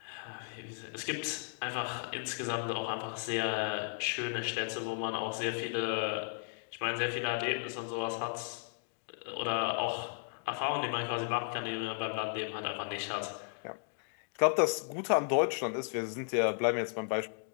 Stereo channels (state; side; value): silent; right; 54 dB below the other